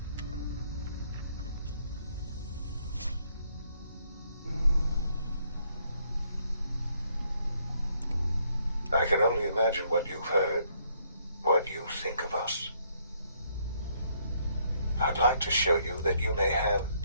I can only imagine what you've heard, what you think of us. I'd like to show you that you may have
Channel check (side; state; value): both; inverted; correlation -0.70